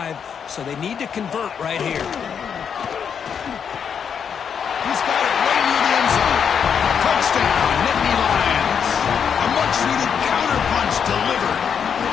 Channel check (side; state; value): right; quieter; 7.3 dB